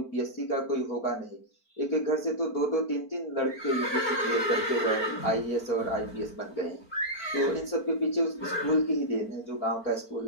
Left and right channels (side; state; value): right; late; 4.5 ms